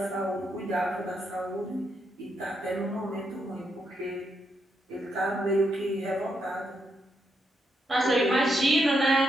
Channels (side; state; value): both; normal; correlation 0.80